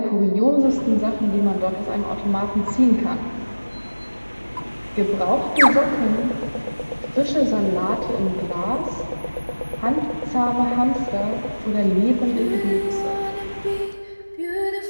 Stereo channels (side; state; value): both; inverted; correlation -1.00